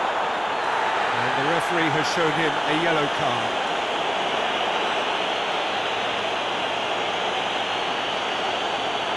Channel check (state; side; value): identical; both; correlation 1.00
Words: And the referee has shown him a yellow card.